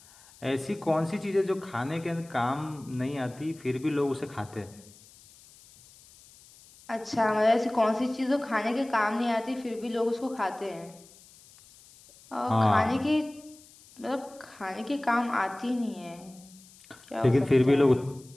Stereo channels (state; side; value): noise; left; hiss, 24 dB below the sound